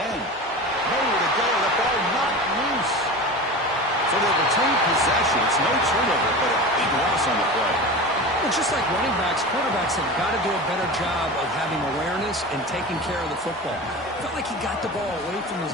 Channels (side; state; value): both; normal; correlation 0.31